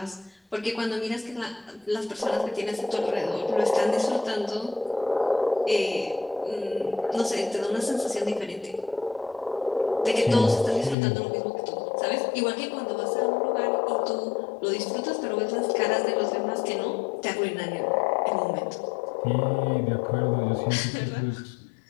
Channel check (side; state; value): right; drops out; at 11.0 s